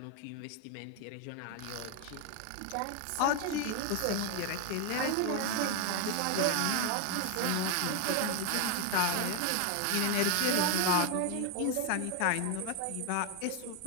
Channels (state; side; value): different; both; correlation 0.01